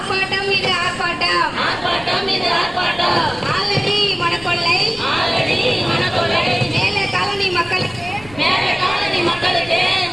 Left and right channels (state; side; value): noise; left; rumble, 19 dB below the sound